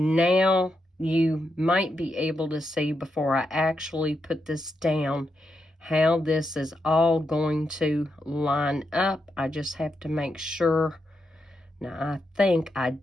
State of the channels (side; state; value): both; normal; correlation 0.84